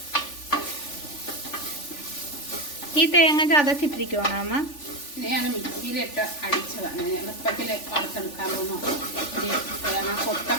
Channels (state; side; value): late; right; 3.4 ms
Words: ഈ തേങ്ങ ചതച്ചിട്ടിരിക്കുവാണോ അമ്മ? ഞാൻ മിക്സിയിലിട്ട് അടിച്ചതാണ്. എളുപ്പത്തിൽ വറുത്തെടുക്കാമോ. തേങ്ങ